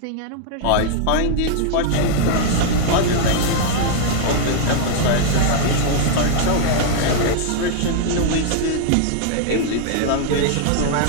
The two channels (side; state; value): both; different; correlation -0.01